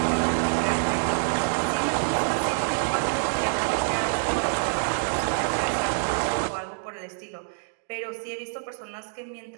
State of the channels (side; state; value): left; silent; 61 dB below the other